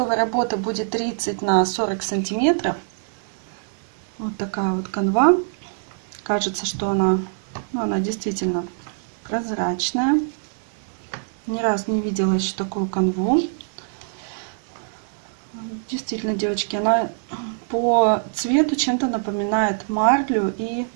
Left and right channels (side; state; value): left; silent; digital silence